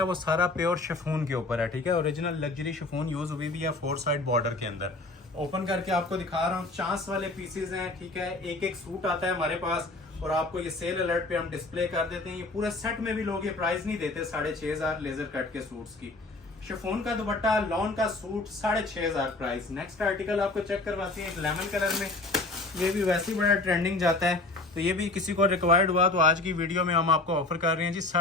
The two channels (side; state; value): right; quieter; 3.1 dB